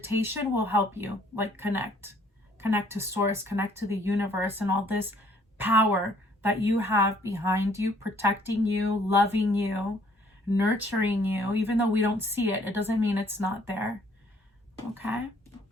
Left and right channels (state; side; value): normal; both; correlation 0.61